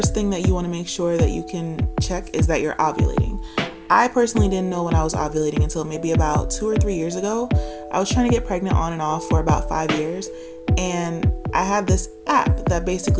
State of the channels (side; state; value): both; identical; correlation 1.00